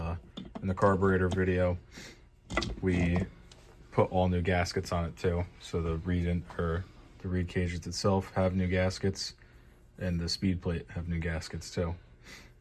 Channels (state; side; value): identical; both; correlation 1.00